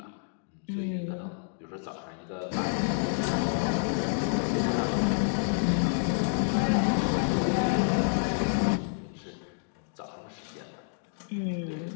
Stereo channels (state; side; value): silent; right; digital silence